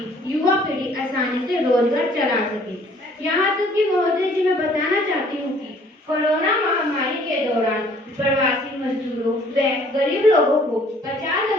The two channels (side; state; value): both; normal; correlation 0.58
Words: युवा पीढ़ी आसानी से रोजगार चला सके। यहाँ तक कि महोदय जी मैं बताना चाहती हूँ कि कोरोना महामारी के दौरान प्रवासी मजदूरों व गरीब लोगों को